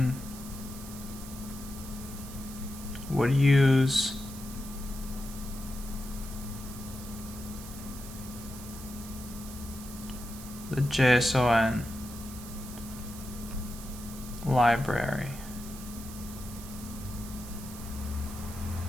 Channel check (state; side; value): noise; right; hiss, 14 dB below the sound